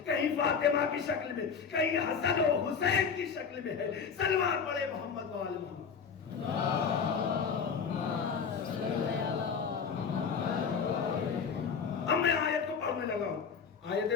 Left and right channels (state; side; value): quieter; right; 6.2 dB